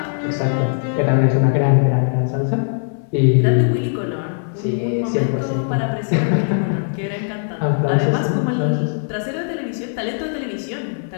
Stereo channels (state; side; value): silent; right; 66 dB below the other